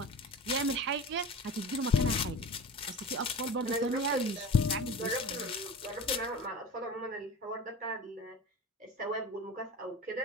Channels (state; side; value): normal; both; correlation 0.33